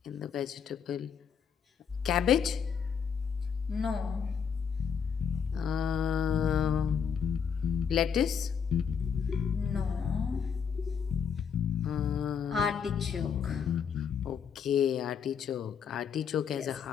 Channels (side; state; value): right; quieter; 7.0 dB